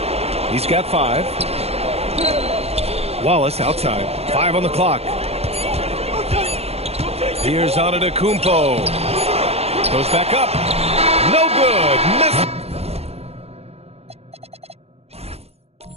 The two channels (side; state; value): left; late; 0.30 ms